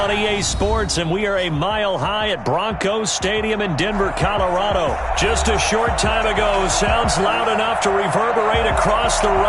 on EA Sports, and we are a mile high at Broncos Stadium in Denver, Colorado. Just a short time ago, sounds loud enough to reverberate across the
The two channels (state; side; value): identical; both; correlation 1.00